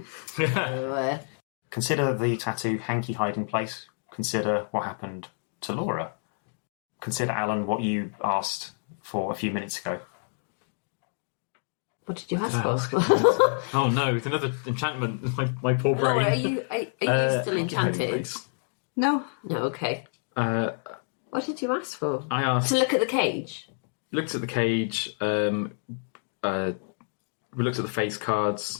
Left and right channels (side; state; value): right; silent; digital silence